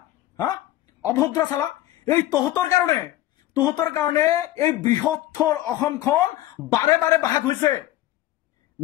হা অভদ্ৰ চালা। এই তহঁতৰ কাৰণে এই বৃহত্তৰ অসমখন বাৰে বাৰে ভাগ হৈছে।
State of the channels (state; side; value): quieter; right; 15.0 dB